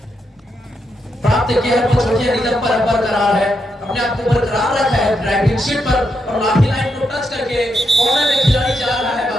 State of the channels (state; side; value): normal; both; correlation 0.81